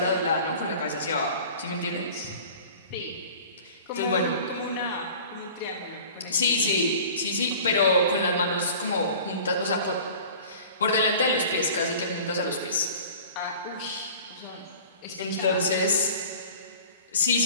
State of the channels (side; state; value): both; inverted; correlation -0.44